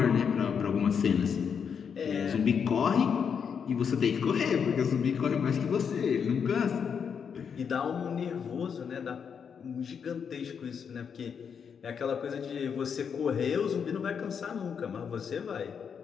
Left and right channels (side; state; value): right; quieter; 6.9 dB